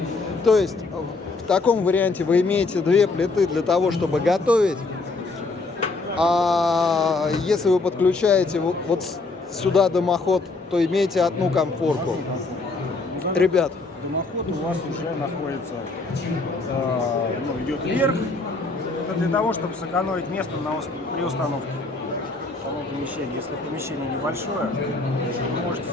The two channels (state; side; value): quieter; right; 3.6 dB